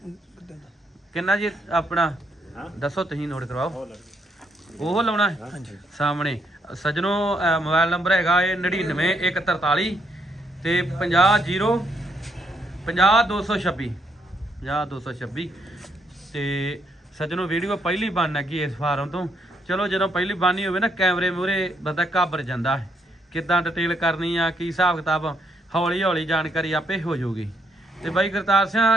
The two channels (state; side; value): normal; both; correlation 0.75